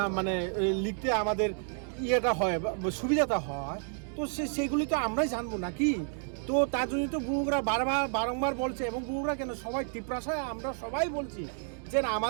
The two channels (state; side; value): silent; left; 57 dB below the other